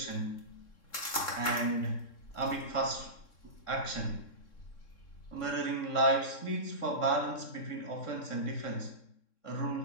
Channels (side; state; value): right; late; 3.6 ms